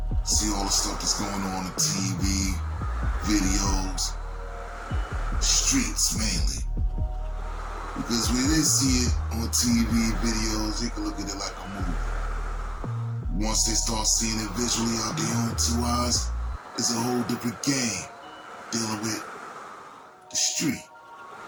see all the stuff that's going on TV, videos, streets mainly. Because when they see it on TV, videos, they can look at it like a movie. Once they start seeing it visually out their own two eyes, it's a whole different game dealing with the street.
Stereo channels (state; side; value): identical; both; correlation 1.00